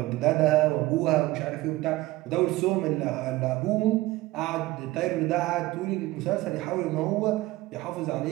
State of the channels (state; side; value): quieter; left; 18.4 dB